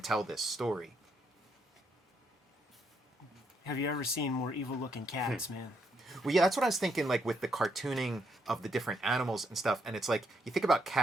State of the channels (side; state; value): both; normal; correlation 0.76